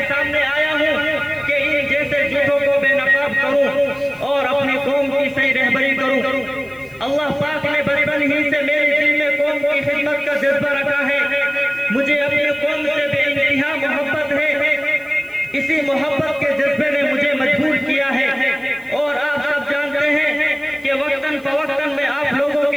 सामने आया हूँ कि इन जैसे झूठों को बेनकाब करूँ और अपनी कौम की सही रहबरी करूँ। अल्लाह पाक ने बचपन ही से मेरे दिल में कौम की खिदमत का जज्बा रखा है। मुझे अपनी कौम से बेइंतहा मोहब्बत है। इसी मोहब्बत के जज्बे ने मुझे मजबूर किया है। और आप सब जानते हैं कि वक्तन फवक्तन में आप लोगों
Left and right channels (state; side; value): noise; left; hiss, 28 dB below the sound